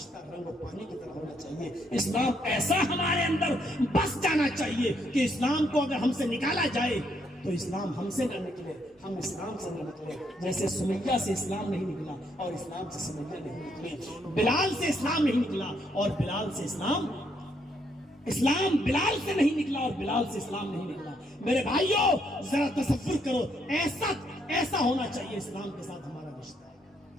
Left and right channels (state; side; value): normal; both; correlation 0.73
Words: رنگ اور پانی کی طرح ہونا چاہیے. اسلام ایسا ہمارے اندر بس جانا چاہیے کہ اسلام کو اگر ہم سے نکالا جائے تو اسلام ہم سے نہ نکلے، ہم اسلام سے نہ نکلے. جیسے سمیہ سے اسلام نہیں نکلا اور اسلام سے سمیہ نہیں نکلی، بلال سے اسلام نہیں نکلا اور بلال سے اسلام بلال سے نہیں نکلا اور بلال سے اسلام نہیں نکلا. میرے بھائیوں، ذرا تصور کرو، ایسا ہونا چاہیے اسلام کے ساتھ ہمارا رشتہ.